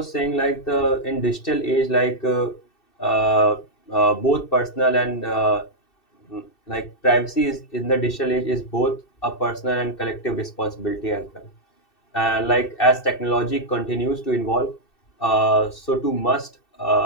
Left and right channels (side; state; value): right; late; 2.7 ms